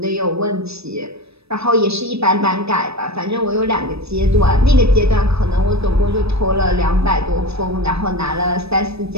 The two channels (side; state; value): left; late; 0.78 ms